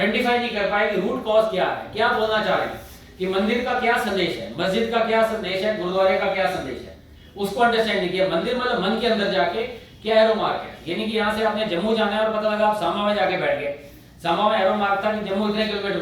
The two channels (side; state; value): both; identical; correlation 1.00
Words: नहीं कर पाए कि रूट कॉज क्या है, क्या बोलना चाह रहे हैं, कि मंदिर का क्या संदेश है, मस्जिद का क्या संदेश है, गुरुद्वारे का क्या संदेश है, उसको अंडरस्टैंड नहीं किया। मंदिर मतलब मन के अंदर जाके क्या एरो मार्क है, यानी कि यहाँ से आपने जम्मू जाना है और पता लगा आप सामा में जाके बैठ गए, सामा में एरो मार्क था कि जम्मू इतने किलोमीटर